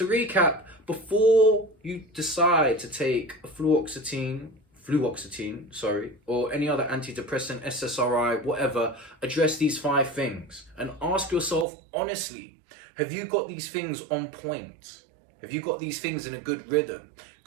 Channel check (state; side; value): drops out; left; at 11.7 s